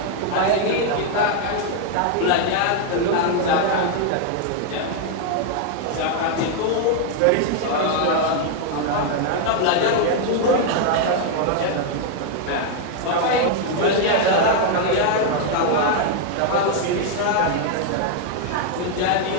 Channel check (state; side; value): different; both; correlation 0.00